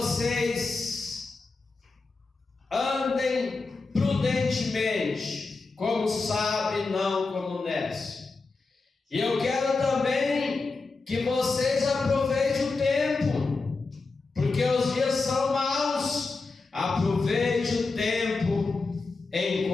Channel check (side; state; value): right; quieter; 3.9 dB